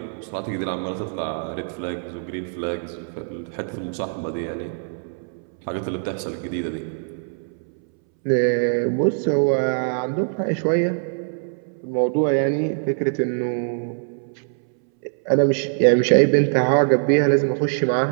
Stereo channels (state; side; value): silent; left; 63 dB below the other